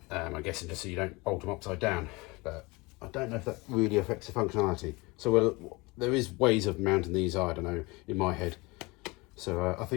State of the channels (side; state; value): right; quieter; 24.5 dB